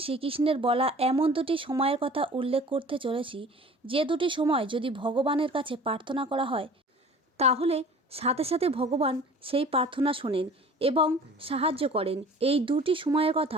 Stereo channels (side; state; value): both; normal; correlation 0.45